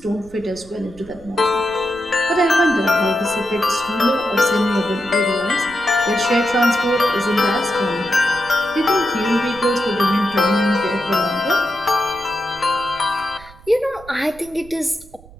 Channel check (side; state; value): right; noise; rumble, 21 dB below the sound